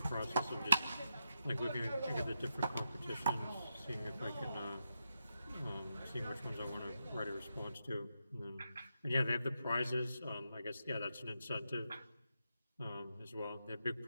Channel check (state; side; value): inverted; both; correlation -0.85